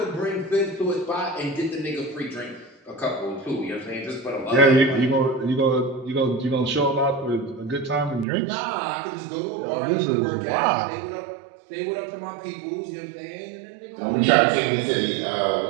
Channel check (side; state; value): left; drops out; at 8.2 s